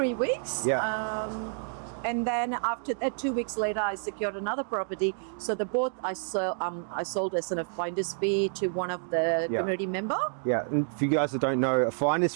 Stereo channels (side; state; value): left; silent; digital silence